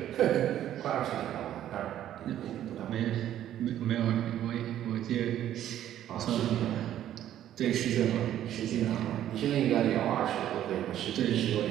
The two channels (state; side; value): quieter; left; 11.7 dB